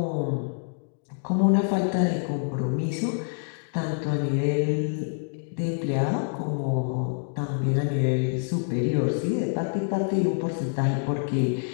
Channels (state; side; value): silent; right; 61 dB below the other